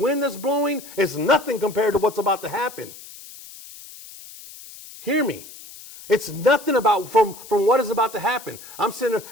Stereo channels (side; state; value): left; noise; hiss, 17 dB below the sound